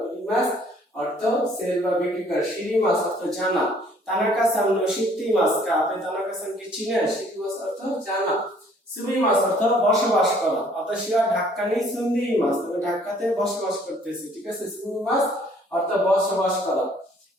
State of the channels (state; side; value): normal; both; correlation 0.59